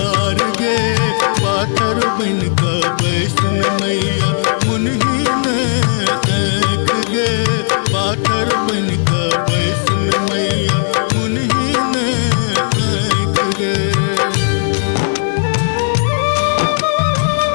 गे। पाथर बन का बैसन मैया मुन्हीन आँख गे। पाथर बन का बैसन मैया मुन्हीन आँख गे।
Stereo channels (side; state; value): right; silent; 69 dB below the other